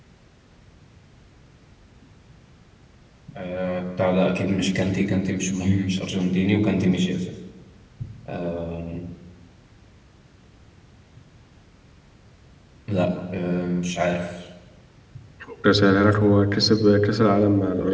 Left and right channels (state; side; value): identical; both; correlation 1.00